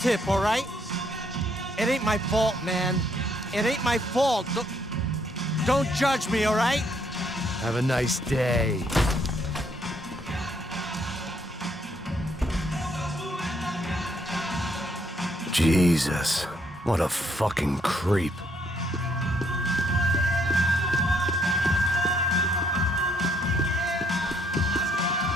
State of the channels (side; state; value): both; normal; correlation 0.70